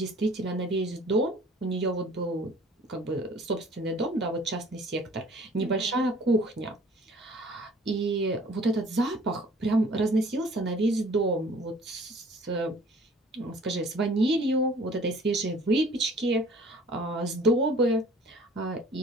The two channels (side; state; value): both; normal; correlation 0.52